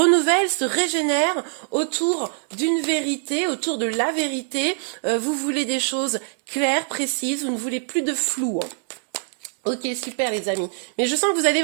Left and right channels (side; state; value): left; silent; 63 dB below the other